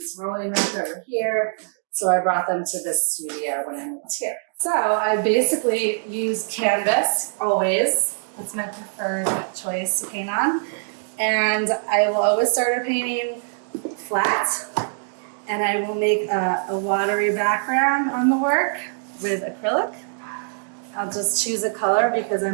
rolling up over here. So I brought them to this studio when I moved here. So I basically use canvas always. That's my preferred choice to paint on. And I will always start a painting flat. And I will make a watery background on the work with acrylic. I'll just choose a color because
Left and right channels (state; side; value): silent; left; digital silence